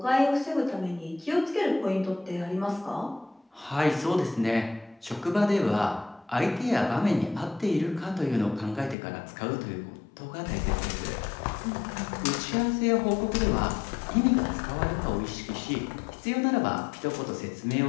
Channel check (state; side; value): drops out; right; at 9.0 s